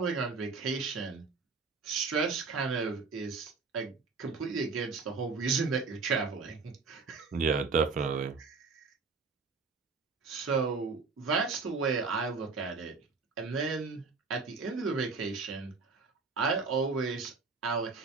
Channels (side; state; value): left; quieter; 4.5 dB